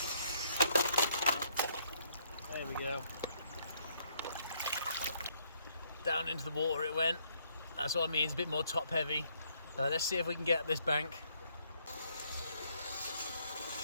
There we go. Down into the water it went. That's what I mean, it's a bit more top heavy. Let's see if we can get up this bank.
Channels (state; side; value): inverted; both; correlation -0.69